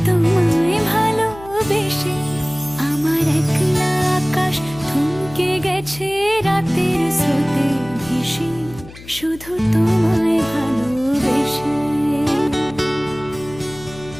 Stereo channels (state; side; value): noise; left; hum, 18 dB below the sound